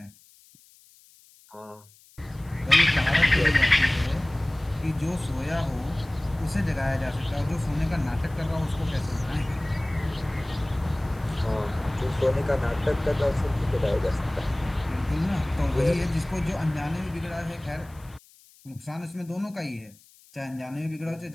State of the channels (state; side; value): noise; left; hiss, 27 dB below the sound